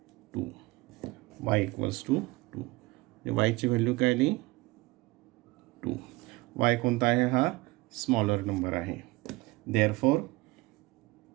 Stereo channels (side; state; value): left; quieter; 22.0 dB